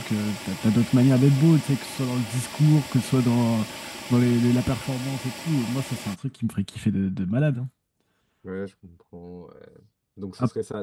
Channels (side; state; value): both; identical; correlation 1.00